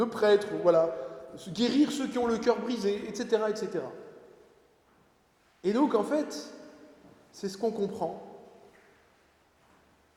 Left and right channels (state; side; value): identical; both; correlation 1.00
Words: prêtre, voilà. Guérir ceux qui ont le cœur brisé, etc., etc. Et donc, en fait, c'est ce qu'on comprend.